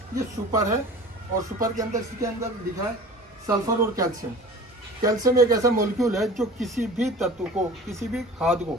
ये सुपर है। और सुपर के अंदर, इसके अंदर लिखा है सल्फर और कैल्शियम। कैल्शियम एक ऐसा मॉलिक्यूल है जो किसी भी तत्व को, किसी भी खाद को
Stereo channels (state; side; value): normal; both; correlation 0.41